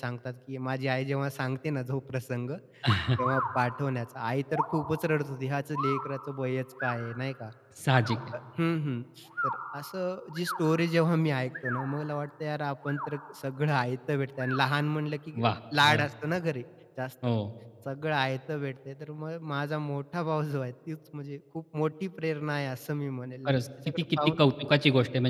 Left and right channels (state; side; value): identical; both; correlation 1.00